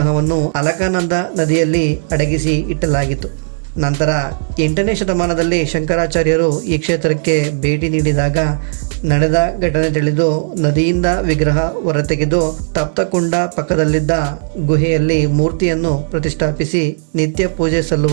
ಅಲಕಾನಂದ ನದಿಯಲ್ಲಿ ಅಡಗಿಸಿ ಇಟ್ಟಲಾಗಿತ್ತು. ನಂತರ 8ನೇ ಶತಮಾನದಲ್ಲಿ ಶಂಕರಾಚಾರ್ಯರು ಈ ಕ್ಷೇತ್ರಕ್ಕೆ ಭೇಟಿ ನೀಡಿದಾಗ ನಡೆದ ಘಟನೆ ತಿಳಿದು ನದಿಯಿಂದ ವಿಗ್ರಹ ಹೊರತೆಗೆದು ತಪ್ತಕುಂಡ ಪಕ್ಕದಲ್ಲಿದ್ದ ಗುಹೆಯಲ್ಲಿ ಮೂರ್ತಿಯನ್ನು ಪ್ರತಿಷ್ಠಾಪಿಸಿ ನಿತ್ಯ ಪೂಜೆ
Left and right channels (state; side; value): silent; left; digital silence